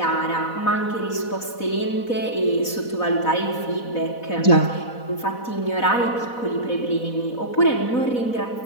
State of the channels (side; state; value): right; late; 4.1 ms